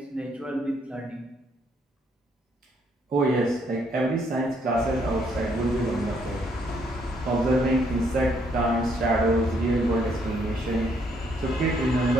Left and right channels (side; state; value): both; normal; correlation 0.70